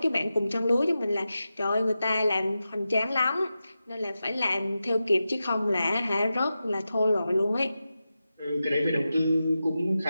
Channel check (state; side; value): inverted; both; correlation -0.92